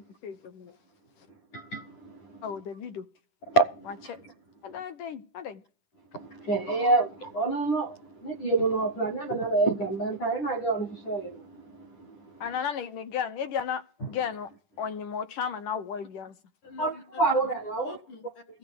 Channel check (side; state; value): right; late; 10 ms